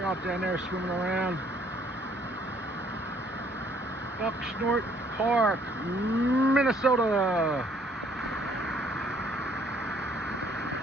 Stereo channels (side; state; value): both; normal; correlation 0.63